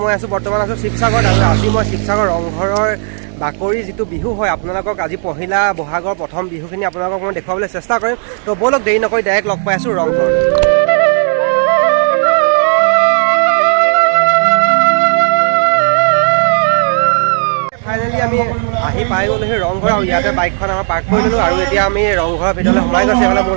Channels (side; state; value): left; silent; 57 dB below the other